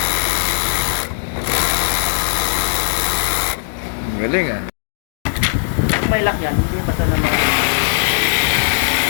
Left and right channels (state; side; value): silent; right; digital silence